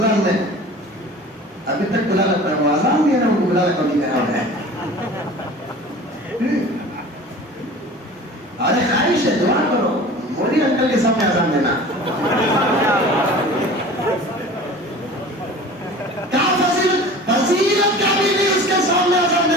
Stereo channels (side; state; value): both; normal; correlation 0.41